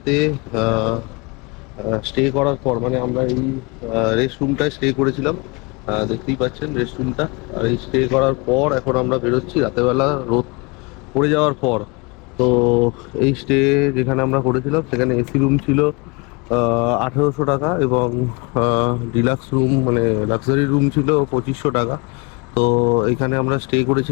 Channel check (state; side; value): quieter; right; 28.7 dB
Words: স্টে করার পর, মানে আমরা এই রেস্ট রুমটায় স্টে করেছিলাম, দেখতেই পাচ্ছেন রেস্ট রুমটা। আর এই স্টে করার পর এখন আমরা বেরোচ্ছি রাতেরবেলা রোদ পড়ে যাওয়ার পর। তো এই স্টে যেখানে আমরা করেছিলাম সেখানে এসি রুম ছিল, 1800 টাকা, এবং ডিলাক্স রুম মানে লাক্সারি রুম ছিল 2500 টাকা। তো এখানে আমরা স্টে